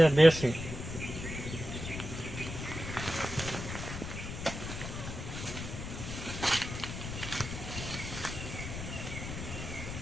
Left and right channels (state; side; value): noise; left; rumble, 7 dB below the sound